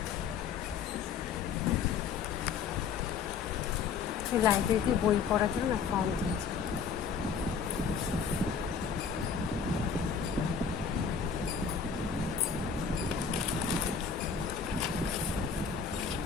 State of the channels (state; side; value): quieter; right; 6.1 dB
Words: লাইব্রেরিতে বই পড়ার জন্য ফর্ম দিয়েছে।